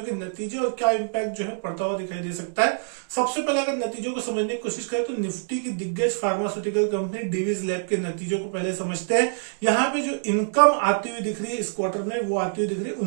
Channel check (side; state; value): left; silent; digital silence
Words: के नतीजे और क्या इम्पैक्ट जो है पड़ता हुआ दिखाई दे सकता है। सबसे पहले अगर नतीजों को समझने की कोशिश करें तो निफ्टी की दिग्गज फार्मास्यूटिकल कंपनी डिवीज लैब के नतीजों को पहले समझते हैं। यहाँ पे जो इनकम आती हुई दिख रही है इस क्वार्टर में, वो आती हुई दिख रही है